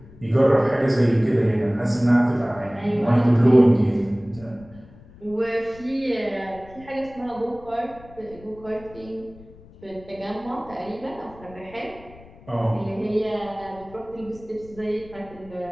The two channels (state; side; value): noise; left; rumble, 21 dB below the sound